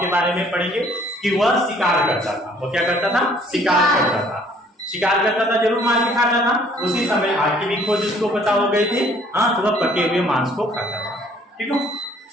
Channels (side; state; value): both; normal; correlation 0.59